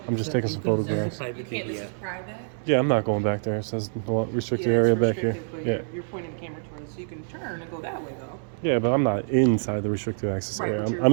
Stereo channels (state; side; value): silent; left; digital silence